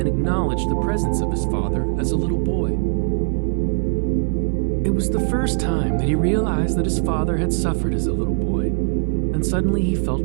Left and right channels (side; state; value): left; silent; 57 dB below the other